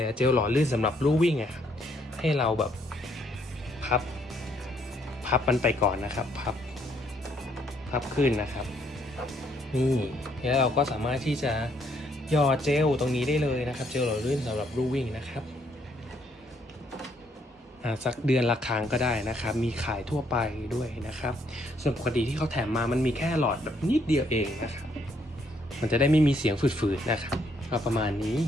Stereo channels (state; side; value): normal; both; correlation 0.70